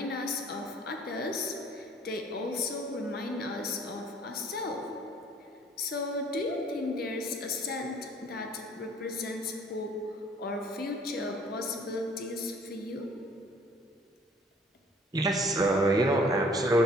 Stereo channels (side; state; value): both; normal; correlation 0.56